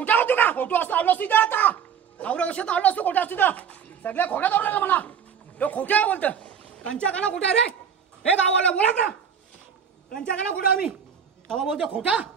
होतो का खोटो असतो आलो असतो इथं आता एवढ्या वर्षात आलो असतो खोटा असतो सगळ्या खोट्या दौडला मला तो खोट्या बोलतं कंच्या काना खोटा रे हे गावाला बोला ना कंच्या काना खोटा आम्ही तेव्हा बोलतो खोटा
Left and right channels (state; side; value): quieter; left; 7.5 dB